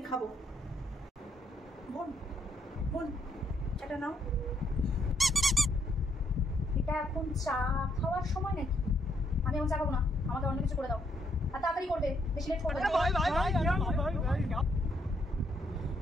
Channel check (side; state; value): both; normal; correlation 0.74